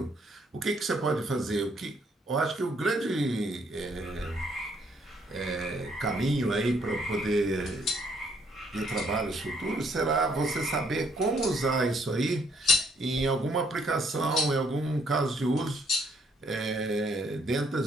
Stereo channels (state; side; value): normal; both; correlation 0.68